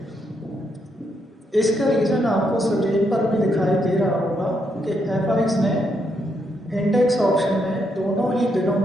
इसका रीज़न आपको स्क्रीन पर भी दिखाई दे रहा होगा कि एफआईएक्स ने इंडेक्स ऑप्शन में दोनों ही दिनों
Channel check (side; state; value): both; normal; correlation 0.78